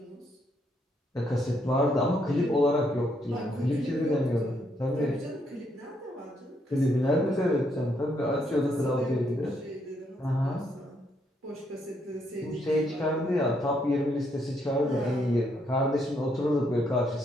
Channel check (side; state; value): both; normal; correlation 0.74